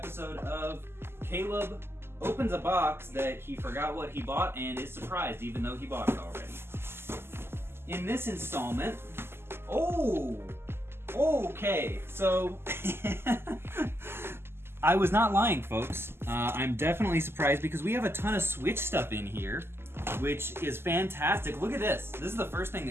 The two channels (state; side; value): late; left; 0.12 ms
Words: of Caleb opens a box that he forgot what he bought and is surprised even though he bought it already. In this installment, okay, so I was not lying, folks. I'm definitely surprised because we have a ton of Switch stuff in here, which is fantastic. Look at this. This is the first thing